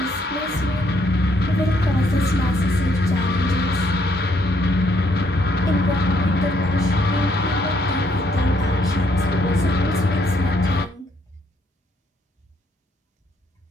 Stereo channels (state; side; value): normal; both; correlation 0.70